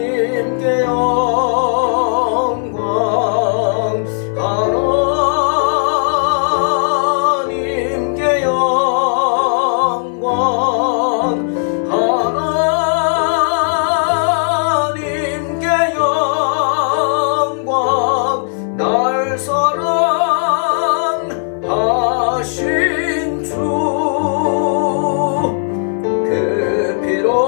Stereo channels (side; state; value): right; silent; 57 dB below the other